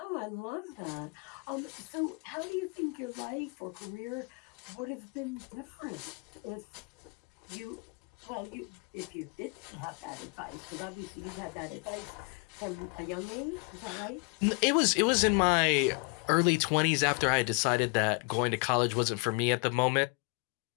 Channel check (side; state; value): right; quieter; 32.1 dB